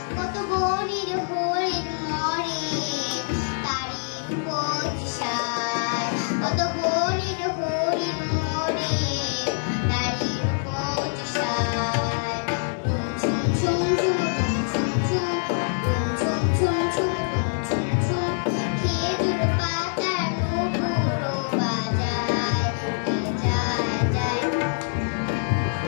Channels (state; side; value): silent; right; 62 dB below the other